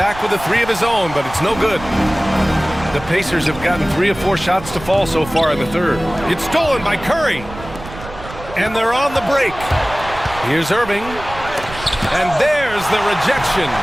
with a 3 of his own, but it's no good. The Pacers have gotten 3 or 4 shots to fall so far in the third. It's stolen by Curry. And they're on the break. Here's Irving. And there's the rejection.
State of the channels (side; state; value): right; noise; rumble, 14 dB below the sound